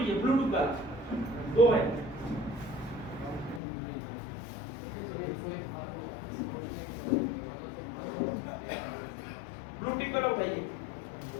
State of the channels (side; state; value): right; drops out; at 3.6 s